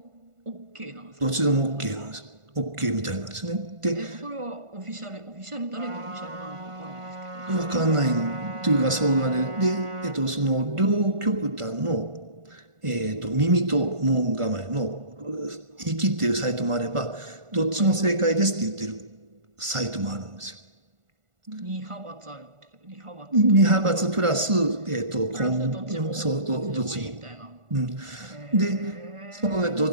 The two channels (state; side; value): late; left; 1.5 ms